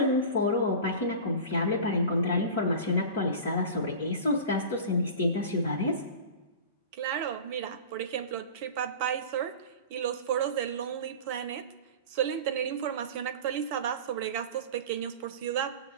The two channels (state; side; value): inverted; both; correlation -0.34